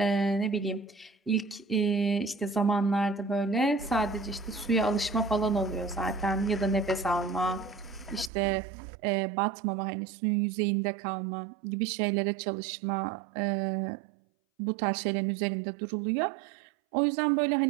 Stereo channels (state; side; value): drops out; left; at 8.3 s